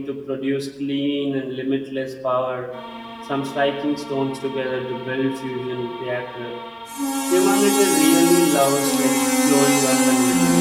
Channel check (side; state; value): both; identical; correlation 1.00